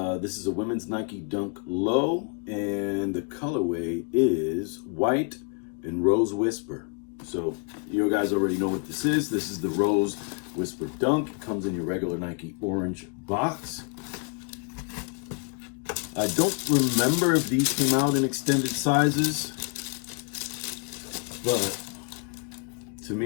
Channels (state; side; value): quieter; right; 37.7 dB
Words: is a women's Nike Dunk Low, and the colorway is white and Rose Whisper. So you guys already know what this is. This is the Rose Whisper Dunk. It comes in your regular Nike orange box. I don't remember if these came out in extended sizes, but to